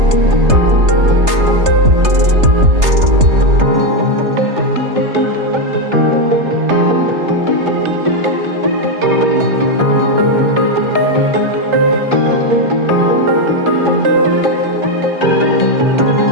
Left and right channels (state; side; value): late; left; 3.3 ms